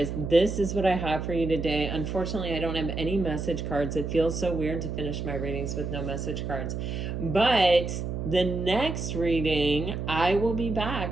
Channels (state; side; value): noise; right; hum, 4 dB below the sound